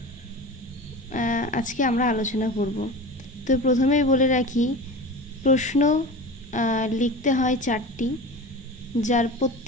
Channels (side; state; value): both; normal; correlation 0.32